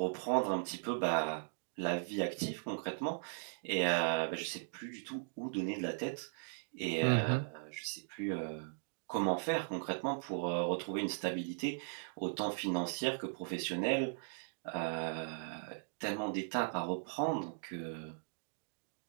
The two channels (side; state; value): left; silent; digital silence